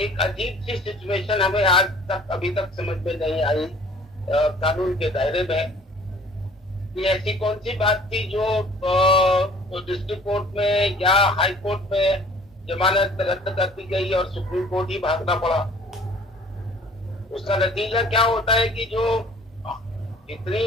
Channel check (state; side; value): normal; both; correlation 0.51